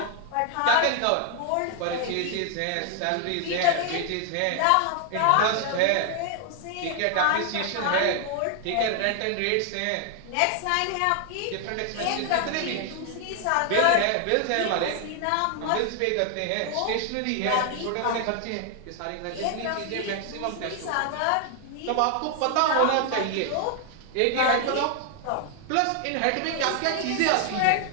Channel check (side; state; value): both; different; correlation 0.00